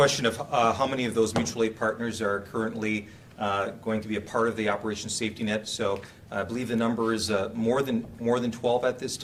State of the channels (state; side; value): identical; both; correlation 1.00